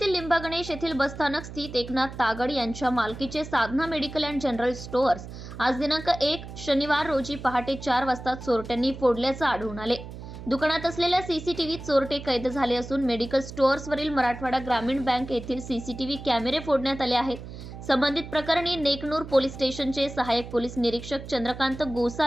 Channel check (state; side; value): noise; right; hum, 12 dB below the sound